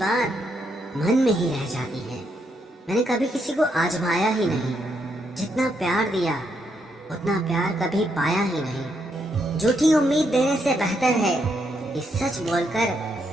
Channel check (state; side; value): normal; both; correlation 0.77